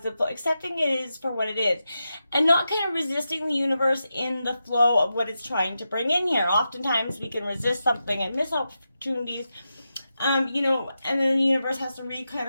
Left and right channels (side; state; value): both; inverted; correlation -0.89